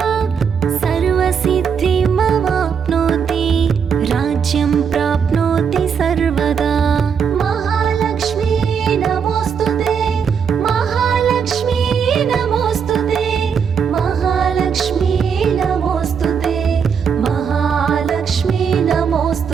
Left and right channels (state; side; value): quieter; left; 6.8 dB